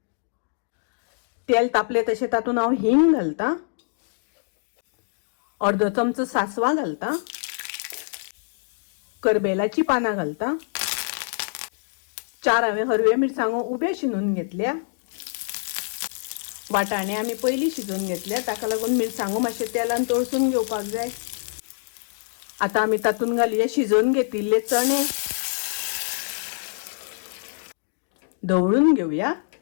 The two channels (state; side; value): silent; right; digital silence